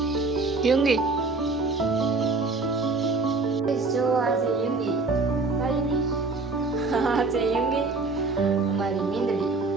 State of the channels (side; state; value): left; quieter; 3.7 dB